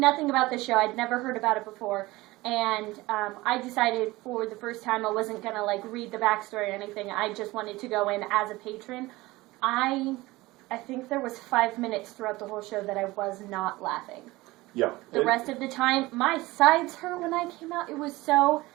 about the show. I'd never heard about it before. And I decided for the first time I wasn't going to like read the backstory or anything. I just wanted to go in as a patron. I think there was 5 minutes throughout the whole show that I was not laughing. Yeah. The rest of the time, my sides hurt when I came out. It was so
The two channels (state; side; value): quieter; left; 20.0 dB